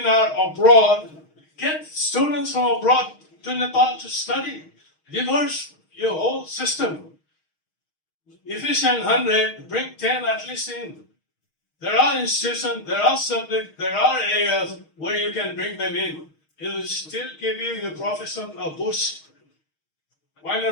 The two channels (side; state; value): right; late; 6.4 ms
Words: abroad, get students from abroad to Nepal to study, reverse your whole system. Efficient 100, bring 10 at least in. There are institutions, there are subjects, there are areas where you can bring them in. It will still give you your profession a boost. Why